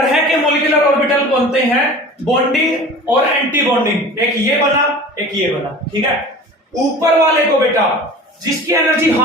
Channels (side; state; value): both; normal; correlation 0.39